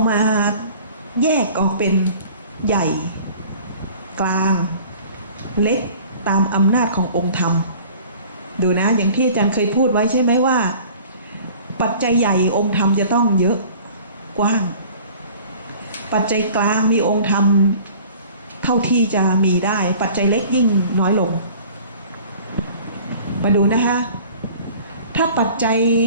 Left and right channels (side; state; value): both; inverted; correlation -0.47